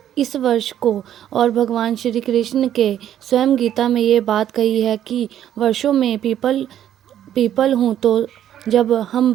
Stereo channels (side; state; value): left; quieter; 10.8 dB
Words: इस वर्ष को और भगवान श्री कृष्ण के स्वयं गीता में ये बात कही है कि वर्षों में पीपल हूँ, तो जब हम